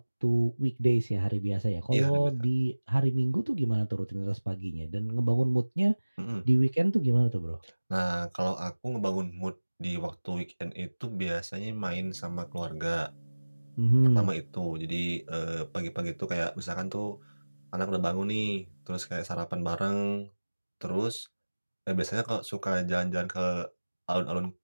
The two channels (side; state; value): both; inverted; correlation -1.00